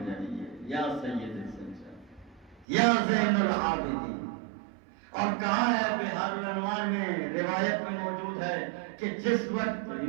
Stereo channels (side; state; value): left; drops out; at 2.7 s